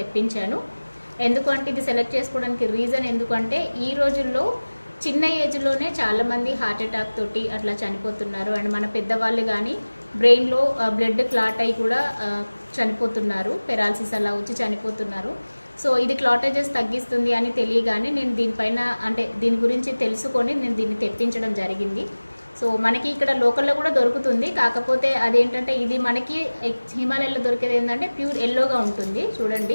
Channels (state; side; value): inverted; both; correlation -1.00